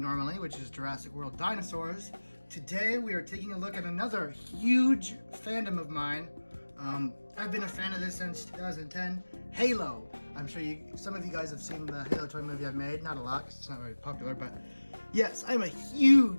which is Jurassic World Dinosaurs. Today we are taking a look at another huge fandom of mine. I've been a fan of this since 2010, Halo. I'm sure some of you guys have seen the Halo toy movie I've made. Not a lot, 'cause it's not very popular, but yes, I'm a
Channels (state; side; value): inverted; both; correlation -1.00